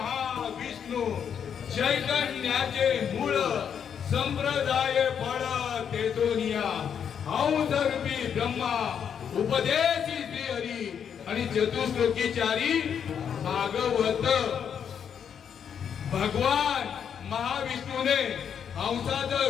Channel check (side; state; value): right; quieter; 7.9 dB